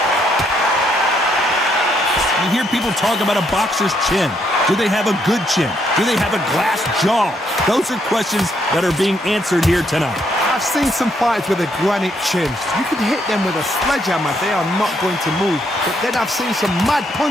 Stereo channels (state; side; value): normal; both; correlation 0.73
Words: You hear people talk about a boxer's chin. Do they have a good chin? Do they have a glass jaw? Those are questions that are being answered here tonight. I've seen some fighters with a granite chin. You can hit them with a sledgehammer. They are not going to move. But then I've seen some mad